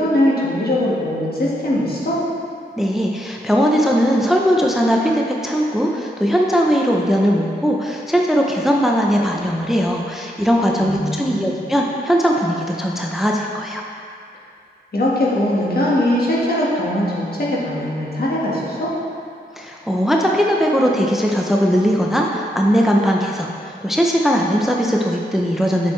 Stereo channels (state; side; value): normal; both; correlation 0.80